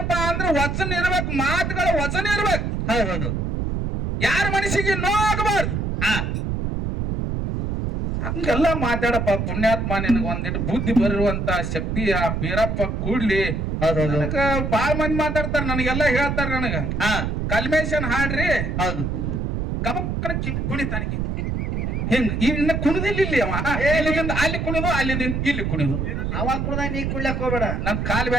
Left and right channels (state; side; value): noise; right; rumble, 1 dB below the sound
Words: ಅಂದ್ರ ವಚನ ಇರ್ಬೇಕು, ಮಾತುಗಳ ವಚನ ಇರ್ಬೇಕು. ಹೌದು, ಯಾರ ಮನಸ್ಸಿಗೆ ನೋಗಬಾರ್ದು. ಹಂಗೆಲ್ಲ ಮಾತಾಡಪ್ಪ ಪುಣ್ಯಾತ್ಮ. ನಿನಗ ಒಂದಿಟ್ಟು ಬುದ್ಧಿ ಬರುವಂತ ಶಕ್ತಿ ಆ ಬೀರಪ್ಪ ಕೂಡ್ಲಿ. ಬಾಳ ಮಂದಿ ಮಾತಾಡ್ತಾರ, ನನಗೆಲ್ಲ ಹೇಳ್ತಾರ. ನನಗ ಕಲ್ಮೇಶನ್ ಹಾಡ್ರಿ ಗಬಕ್ಕನ ಕುಣಿತಾನ ಹಿಂಗ್. ಇನ್ನ ಕುಣಿದಿಲ್ಲ ಇಲ್ಲಿ ಅವ. ಇಲ್ಲಿಂದ ಅಲ್ಲಿ ಕುಣಿದು, ಅಲ್ಲಿಂದ ಇಲ್ಲಿ ಕುಣಿದು. ಅವಾಗ ಕುಡ್ದ ನೀ ಕುಡ್ಲಕ್ ಹೋಗ್ಬೇಡ. ನನ್ ಕಾಲ್